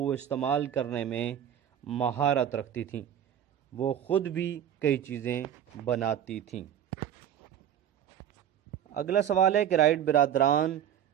استعمال کرنے میں مہارت رکھتی تھیں، وہ خود بھی کئی چیزیں بناتی تھیں۔ اگلا سوال ہے کہ رائٹ برادران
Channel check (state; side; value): quieter; left; 10.0 dB